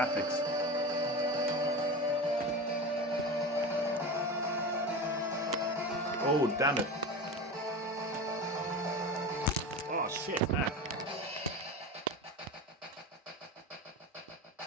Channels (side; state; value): both; normal; correlation 0.27